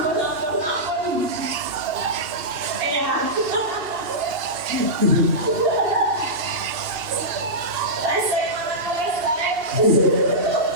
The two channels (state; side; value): late; left; 2.7 ms